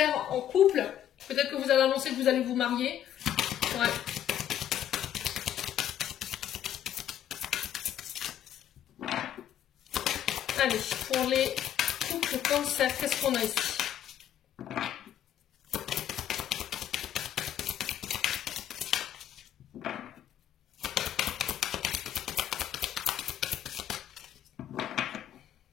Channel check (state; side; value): quieter; right; 10.6 dB